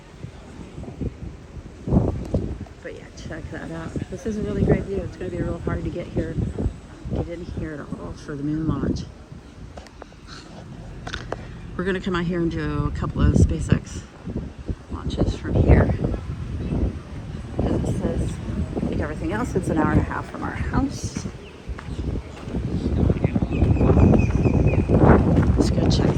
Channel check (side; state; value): both; identical; correlation 1.00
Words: But yeah, check that out. This is a really great view. It's gonna be real hard to get in here at all for the moon launch. We're gonna come out here and do a couple of SpaceX launches from here. As it says, like everything else, it's an hour and a half from our house. Let's go check